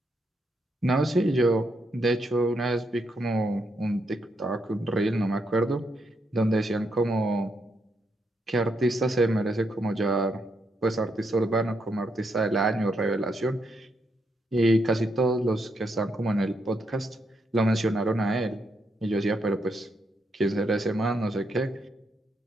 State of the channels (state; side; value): normal; both; correlation 0.79